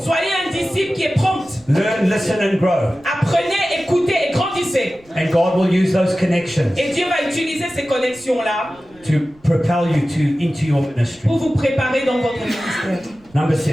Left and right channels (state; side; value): noise; right; rumble, 30 dB below the sound